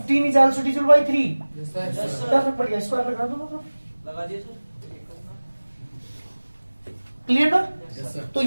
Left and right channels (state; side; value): inverted; both; correlation -1.00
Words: इज आल्सो डिविजिबल बाय 3, क्या फर्क पड़ गया, स्क्वायर लगा दो ना, लगा दिए सर। क्लियर ना। तो